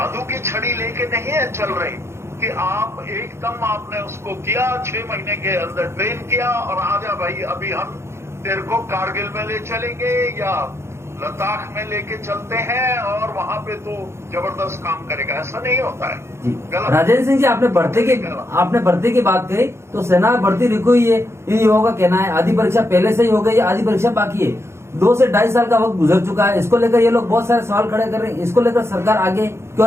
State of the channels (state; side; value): late; left; 0.13 ms